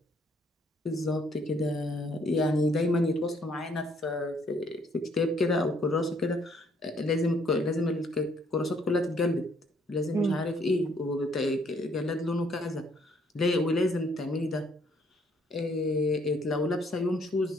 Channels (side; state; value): both; normal; correlation 0.66